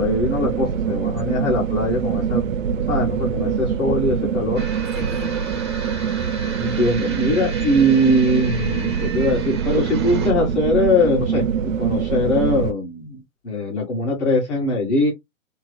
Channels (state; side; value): normal; both; correlation 0.19